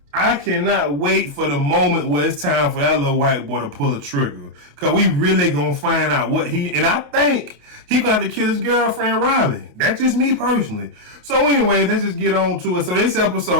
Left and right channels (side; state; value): left; late; 28 ms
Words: I cannot wait for the moment where it's time for that little white boy to pull a trigger. Because we really going to find out what and I think he going to have to kill his girlfriend, Riley. That's just me personally. So anyway, let's just get on to it. So this